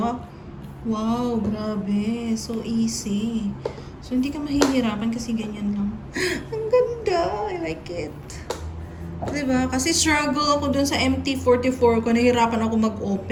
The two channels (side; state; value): both; identical; correlation 1.00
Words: Wow, grabe. So easy. So, hindi ka mahihirapan kasi ganyan lang. Ang ganda. I like it. Diba? Kasi struggle ako dun sa MT44 ko. Nahirapan ako